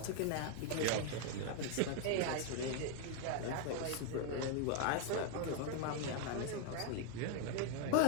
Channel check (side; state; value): both; different; correlation 0.00